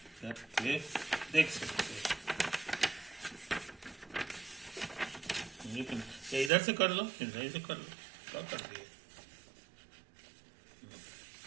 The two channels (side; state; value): left; drops out; at 6.5 s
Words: करके देख सकते हैं। इधर से कर लो, इधर से कर लो, क्या कर दिए।